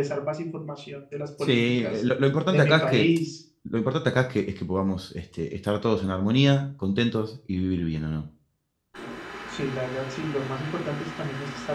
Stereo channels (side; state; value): both; identical; correlation 1.00